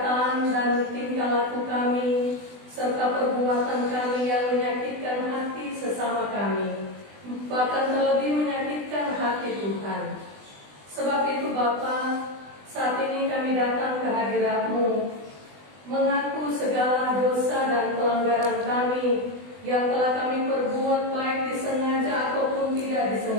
dan tingkah laku kami, serta perbuatan kami yang menyakitkan hati sesama kami, bahkan terlebih menyakitkan hati Tuhan. Sebab itu Bapa, saat ini kami datang ke hadirat-Mu, mengaku segala dosa dan pelanggaran kami yang telah kami perbuat baik disengaja ataupun tidak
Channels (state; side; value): late; left; 20 ms